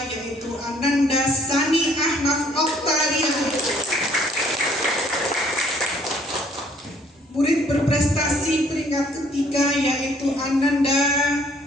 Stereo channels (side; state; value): both; normal; correlation 0.62